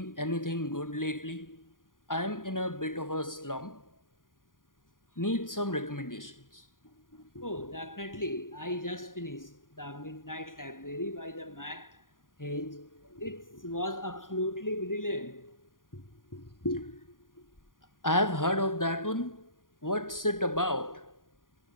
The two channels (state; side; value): late; right; 0.90 ms